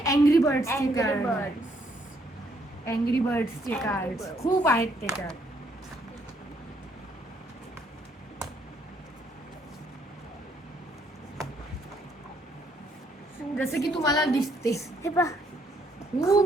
अँग्री बर्ड्सचे कार्ड, अँग्री बर्ड्सचे कार्ड खूप आहेत त्याच्यात. जसं की तुम्हाला दिसते हे पहा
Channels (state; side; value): normal; both; correlation 0.70